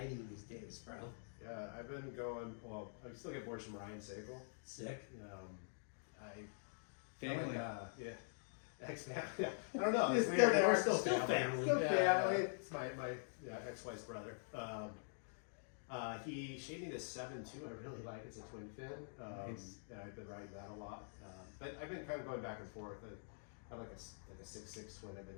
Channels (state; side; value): silent; right; digital silence